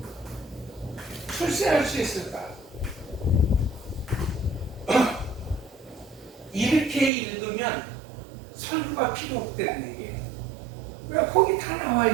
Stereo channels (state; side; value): drops out; left; at 7.1 s